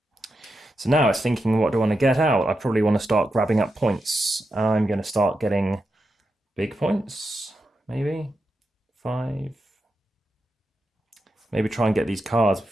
So now it's thinking, what do I want to get out? I probably want to start grabbing up points. I'm going to start getting big points, maybe 5. Maybe try and get these cards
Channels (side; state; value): both; normal; correlation 0.87